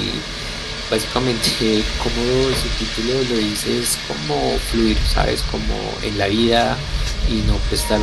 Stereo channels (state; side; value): identical; both; correlation 1.00